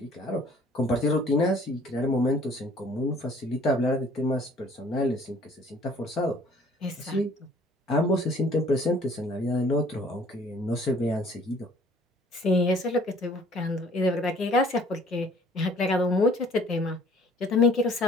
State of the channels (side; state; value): both; normal; correlation 0.55